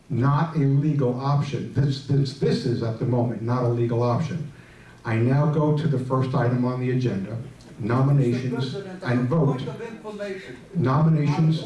not a legal option, this is at the moment not a legal option, I now go to the first item on the agenda, nominations and vote. Nominations.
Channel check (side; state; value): both; identical; correlation 1.00